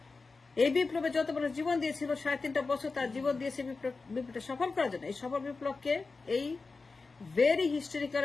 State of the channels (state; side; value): quieter; right; 4.1 dB